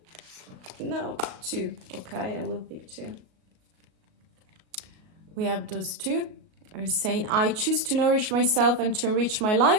No, 2. Okay, I will pick 2. We have those 2. Are saying, I choose to nourish myself and to enrich my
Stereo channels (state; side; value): late; left; 38 ms